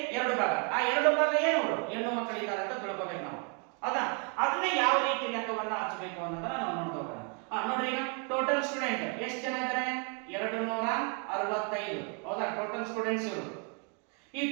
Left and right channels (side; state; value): left; quieter; 37.6 dB